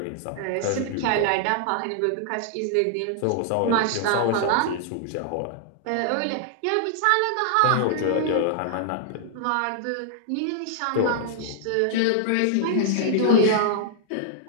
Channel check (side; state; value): both; different; correlation -0.01